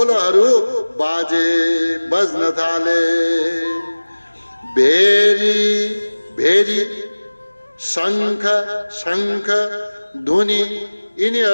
बाजे बज्न थाले। भेरी भेरी शंख शंख धुनी,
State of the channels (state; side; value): inverted; both; correlation -1.00